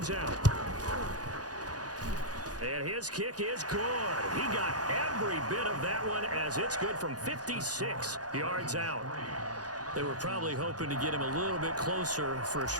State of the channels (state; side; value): late; left; 0.68 ms